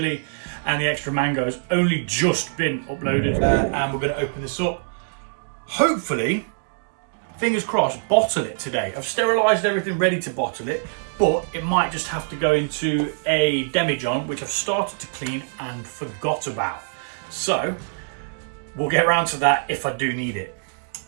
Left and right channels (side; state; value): left; silent; digital silence